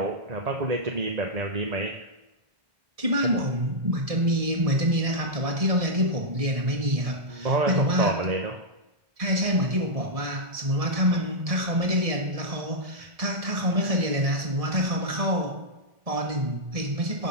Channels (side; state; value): left; late; 1.6 ms